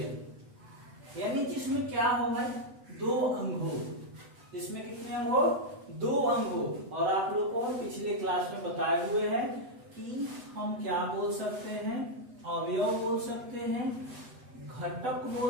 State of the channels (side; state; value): left; late; 8.0 ms